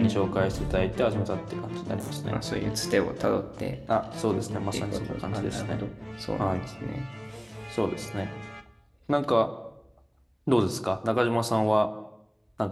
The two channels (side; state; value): both; identical; correlation 1.00